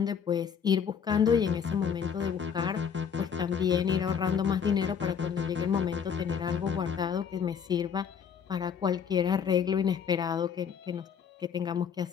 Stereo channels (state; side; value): quieter; right; 7.3 dB